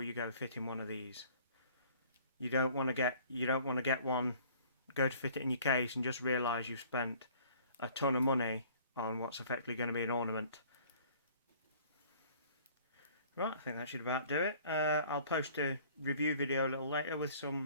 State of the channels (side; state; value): both; inverted; correlation -0.53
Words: you go fitting one of these. You don't want to get one, go to fit it in your case and just realise you've spent a ton of money on what's effectively going to be an ornament. Right, I think that should about do it. I'll post a review video a little later with